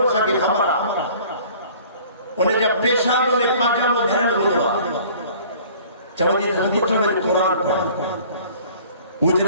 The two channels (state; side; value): inverted; both; correlation -0.50